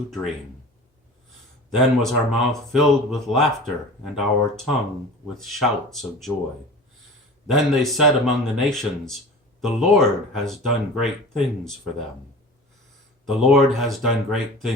dream. Then was our mouth filled with laughter, and our tongue with shouts of joy. Then they said among the nations, the Lord has done great things for them. The Lord has done great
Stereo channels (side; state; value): both; normal; correlation 0.38